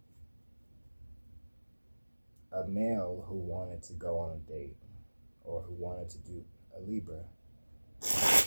A male who wanted to go on a date or who wanted to do a Libra.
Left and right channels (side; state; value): both; inverted; correlation -1.00